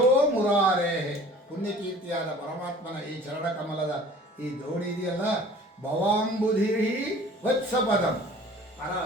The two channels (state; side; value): normal; both; correlation 0.47